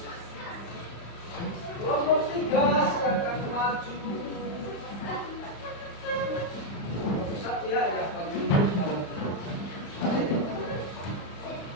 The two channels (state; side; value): late; right; 35 ms